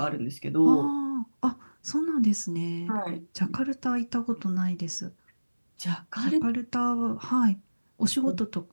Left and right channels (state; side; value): inverted; both; correlation -1.00